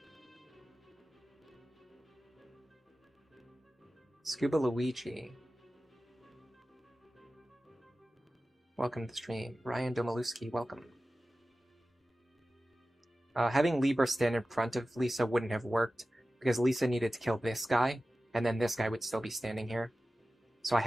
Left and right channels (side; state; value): both; normal; correlation 0.95